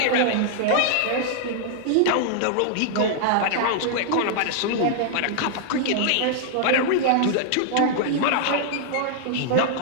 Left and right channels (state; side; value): different; both; correlation -0.01